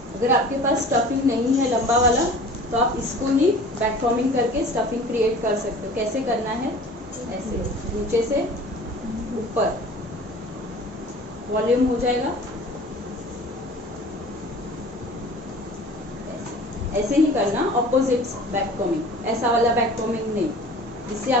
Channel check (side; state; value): both; normal; correlation 0.43